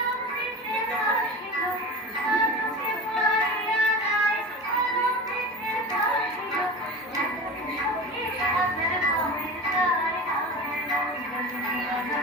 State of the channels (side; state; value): both; normal; correlation 0.30